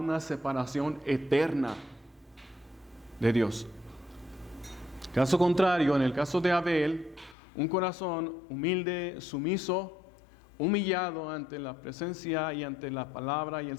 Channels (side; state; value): right; drops out; at 7.4 s